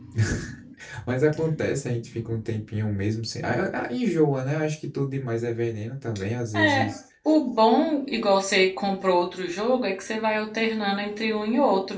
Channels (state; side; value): identical; both; correlation 1.00